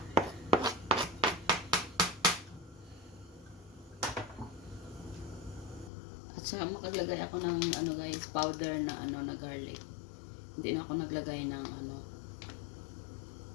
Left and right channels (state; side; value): drops out; right; at 5.9 s